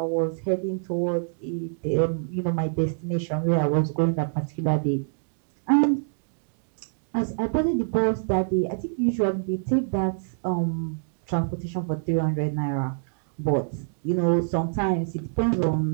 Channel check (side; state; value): left; silent; digital silence